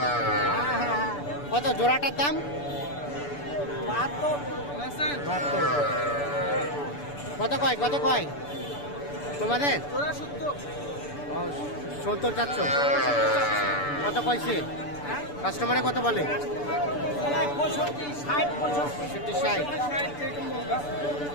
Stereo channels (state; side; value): late; right; 6.9 ms